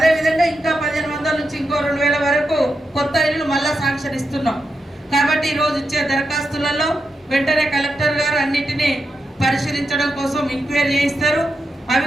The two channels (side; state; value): both; normal; correlation 0.86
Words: ఇంకా 1500 నుంచి ఇంకో 2000 వరకు కొత్త ఇల్లులు మళ్ళా శాంక్షన్ ఇస్తున్నాం. కాబట్టి ఈరోజు ఇచ్చే దరఖాస్తులలో వెంటనే కలెక్టర్ గారు అన్నిటినీ పరిశీలించడం కోసం ఎంక్వైరీ చేయిస్తారు. అవి